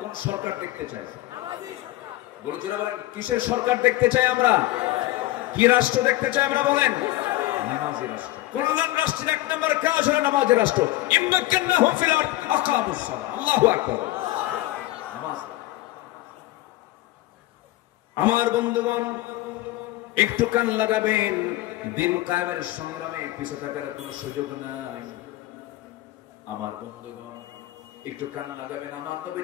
সরকার দেখতে চাই? বলে জোরে বলেন, কিসের সরকার দেখতে চাই আমরা? কি রাষ্ট্র দেখতে চাই আমরা? বলেন নামাজি রাষ্ট্র। কল্যাণ রাষ্ট্রের 1 নম্বর কাজ হলো নামাজি রাষ্ট্র। ইম্মাক্কান্নাহুম ফিল আরদ আকামুস সালাহ। আল্লাহু আকবার। নামাজ। আমার বন্ধুগণ একটু কান লাগাবেন, দিন কায়েমের সংগ্রামে পিছু থাকার কোনো সুযোগ নাই। আমার বন্ধুগণ একটু কান লাগাবেন। আমার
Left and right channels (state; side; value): quieter; right; 17.0 dB